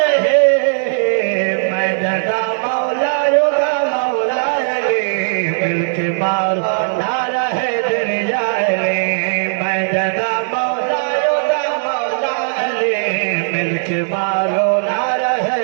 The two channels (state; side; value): silent; left; digital silence